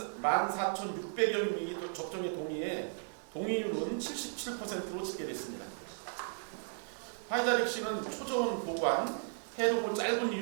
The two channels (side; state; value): left; silent; digital silence